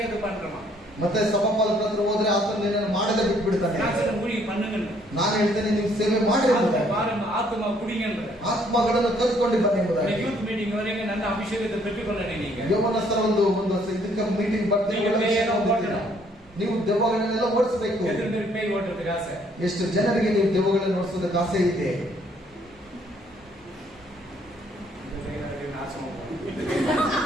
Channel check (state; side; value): normal; both; correlation 0.65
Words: பண்றமா? ಮತ್ತೆ ಸಭಾಪಾಲಕರ ಹತ್ರ ಹೋದ್ರೆ ಆತನು ನಿನ್ನನ್ನು ಮಾಡದೆ ಬಿಟ್ಬಿಡ್ತಾನೆ. நான் சொல்ல ஊழிய பண்ணுங்க, ನಾನು ಹೇಳ್ತೇನೆ ನೀವು ಸೇವೆ ಮಾಡಿ ಎಂಬುದಾಗಿ. பாருங்க ஆத்மா குடிங்கன்ற. ಆತ್ಮಗಳನ್ನು ಕರೆದುಕೊಂಡು ಬನ್ನಿ ಎಂಬುದಾಗಿ. ಯೂತ್ ಮೀಟಿಂಗ್ ವರೆಗೆ ನನ್ನ ಅಭಿಷೇಕத்தை பெற்றுக்கொள்ளணும். நீங்க ಯೌವನಸ್ಥರ ಒಂದು ಇದಕ್ಕೆ ಮೀಟಿಂಗ್ ಬರ್ತೀವಿ, ನೀವು ದೆವ್ವಗಳನ್ನೆಲ್ಲ ಓಡಿಸಬೇಕು. எத்தனை பேர் பேய் ஓட்டுறதுக்கு ஆசை? ಎಷ್ಟು ಜನರಿಗೆ ನೀವು ದೆವ್ವಗಳನ್ನು ಓಡಿಸೋದಕ್ಕೆ ಆಸೆ ಇದೆ?